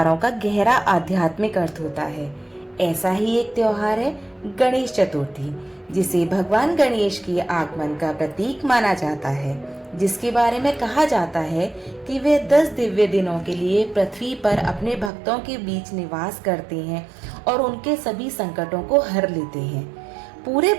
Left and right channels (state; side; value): drops out; left; at 15.1 s